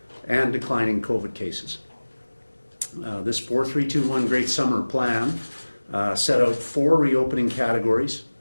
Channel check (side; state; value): both; inverted; correlation -1.00